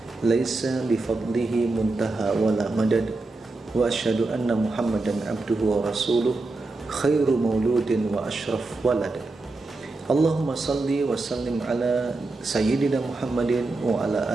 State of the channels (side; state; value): left; quieter; 3.3 dB